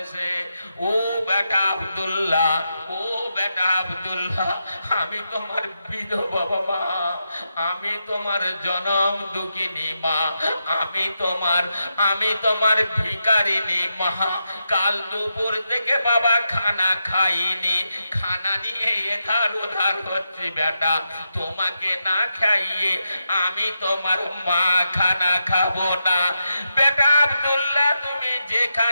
ও বেটা আব্দুল্লাহ, ও বেটা আব্দুল্লাহ, আমি তোমার বিধবা মা, আমি তোমার জনম দুঃখিনী মা, আমি তোমার ভিখারিনী মা। কাল দুপুর থেকে বাবা খানা খাইনি, খানা নিয়ে এধার ওধার হচ্ছে। বেটা তোমাকে না খাইয়ে আমি তোমার মা খানা খাবো না। বেটা আব্দুল্লাহ, তুমি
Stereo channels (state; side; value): inverted; both; correlation -0.86